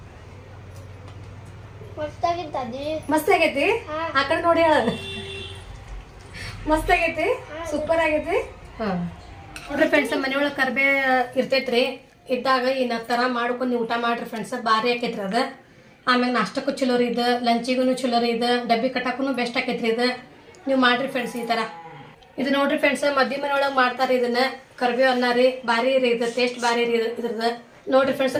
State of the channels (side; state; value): both; identical; correlation 1.00